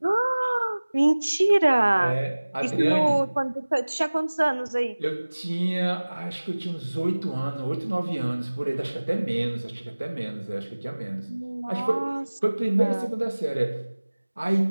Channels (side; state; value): both; inverted; correlation -1.00